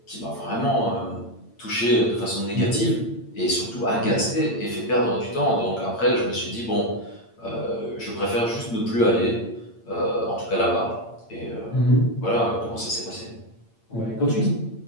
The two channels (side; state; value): right; late; 8.8 ms